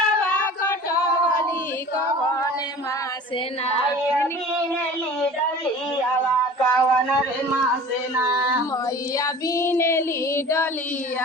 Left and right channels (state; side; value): normal; both; correlation 0.41